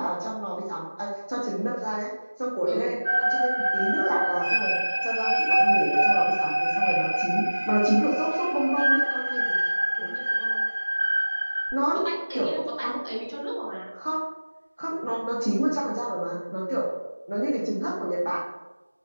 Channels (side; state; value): both; inverted; correlation -1.00